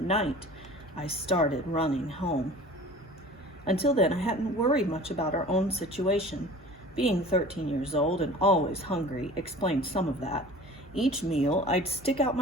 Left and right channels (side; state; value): both; normal; correlation 0.42